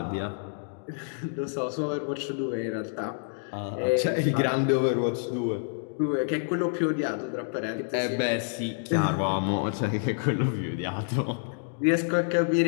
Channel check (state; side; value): silent; right; digital silence